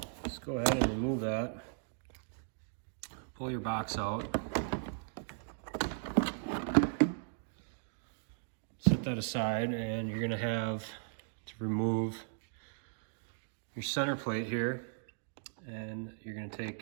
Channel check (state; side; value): silent; left; digital silence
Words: Just go ahead and remove that. Pull your box out. Set that aside, and you're going to have to remove your center plate here, and you're going to